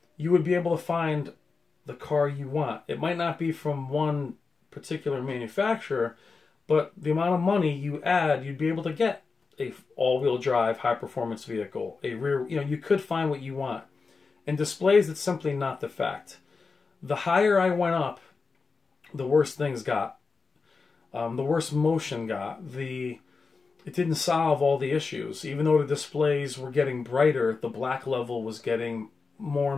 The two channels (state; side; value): quieter; right; 4.5 dB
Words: you would be able to find the car you want. It might not be from one particular manufacturer, but the amount of money you add, you'd be able to get a all-wheel drive, high-performance vehicle, a rear, you could find what you want. In displays, it's simply not the fact. The higher I went up, the worse things got. The worse motion got. It didn't solve all the issues. Even though the displays were getting brighter, the black level was getting more